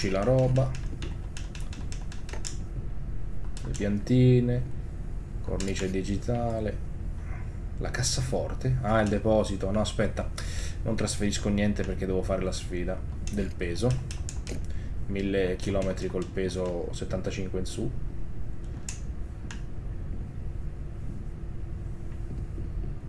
la roba, le piantine, cornice digitale, la cassaforte, ah, il deposito, no aspetta, non trasferisco niente perché devo fare la sfida del peso, 1000 km col peso 75 in su.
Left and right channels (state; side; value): identical; both; correlation 1.00